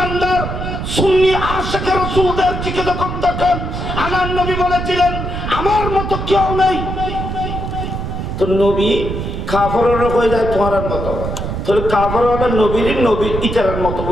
সুন্নি আশিক রাসূলদের দিকে যখন তখন আমার নবী বলেছিলেন আমার মতো কেউ নেই তো নবী কাফেররা কই যায় তোমার মতো তাহলে কাফেররা নবীর ইতারের মতো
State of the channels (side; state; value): right; noise; rumble, 5 dB below the sound